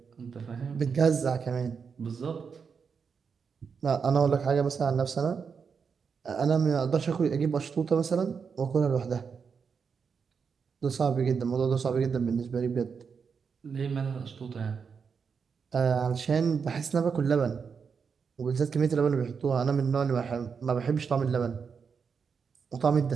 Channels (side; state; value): left; quieter; 6.0 dB